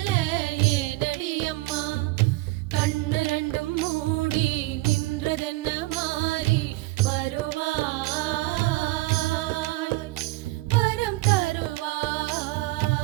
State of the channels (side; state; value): left; quieter; 20.7 dB